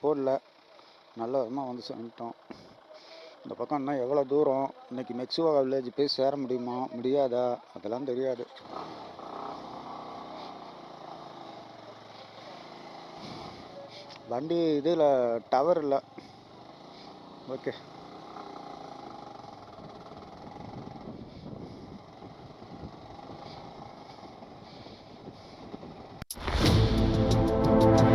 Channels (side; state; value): both; identical; correlation 1.00